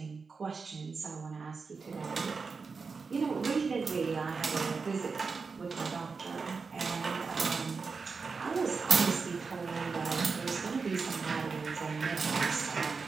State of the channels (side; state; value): left; quieter; 4.8 dB